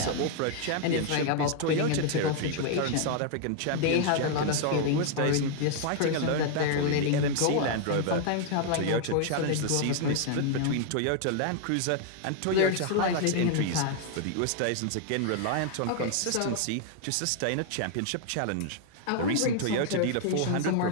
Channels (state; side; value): different; both; correlation 0.00